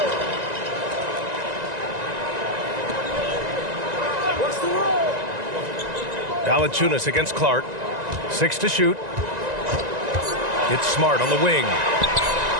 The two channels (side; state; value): left; late; 1.9 ms